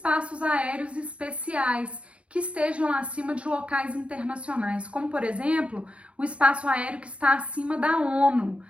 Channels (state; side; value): late; left; 0.061 ms